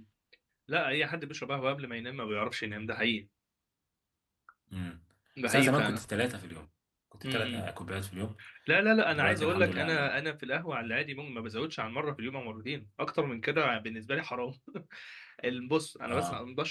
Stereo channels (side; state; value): both; identical; correlation 1.00